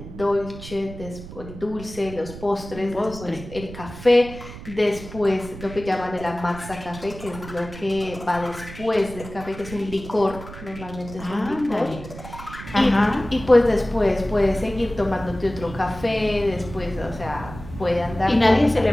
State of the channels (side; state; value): right; noise; rumble, 13 dB below the sound